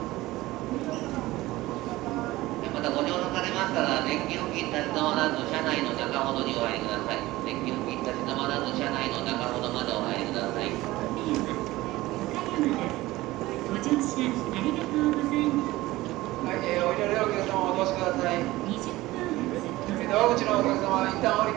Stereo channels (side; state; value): left; quieter; 18.2 dB